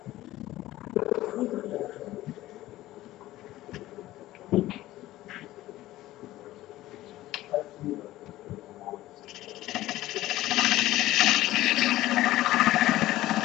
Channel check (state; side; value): quieter; right; 15.9 dB